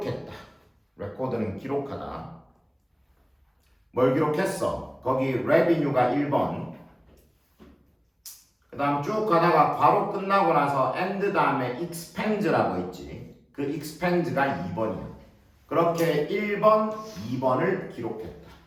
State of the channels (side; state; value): both; identical; correlation 1.00